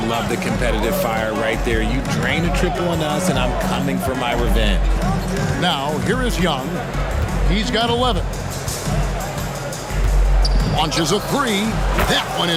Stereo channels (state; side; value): identical; both; correlation 1.00